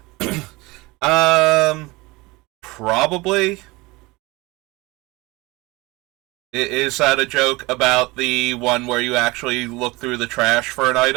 Probably. Is that a joke about the one where you actually look through the trash for an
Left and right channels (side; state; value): left; quieter; 22.8 dB